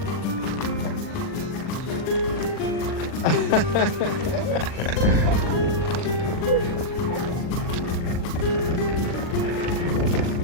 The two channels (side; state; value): right; late; 40 ms